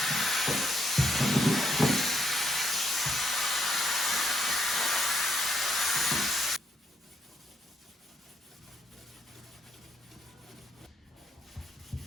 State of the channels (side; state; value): both; normal; correlation 0.73